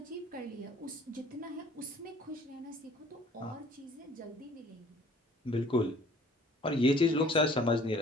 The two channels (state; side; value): normal; both; correlation 0.53